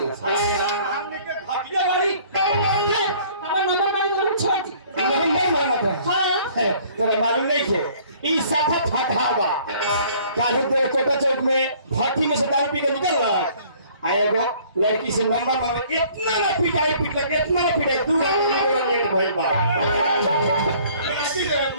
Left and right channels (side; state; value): both; inverted; correlation -0.55